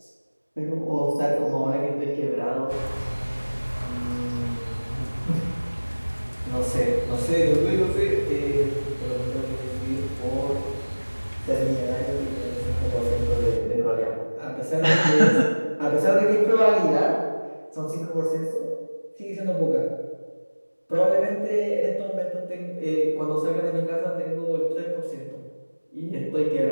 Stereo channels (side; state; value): both; inverted; correlation -1.00